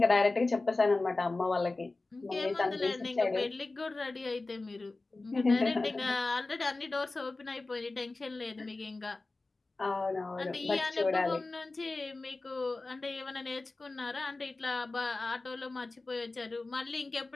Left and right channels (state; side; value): quieter; right; 3.3 dB